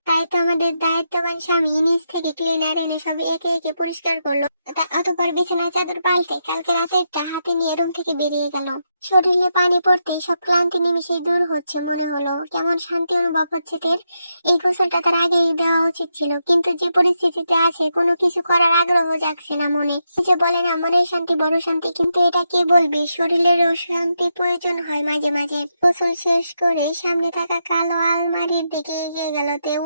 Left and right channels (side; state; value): both; inverted; correlation -0.83